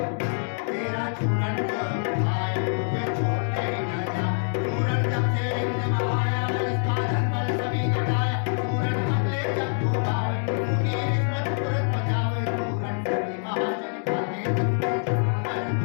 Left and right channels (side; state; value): right; silent; 61 dB below the other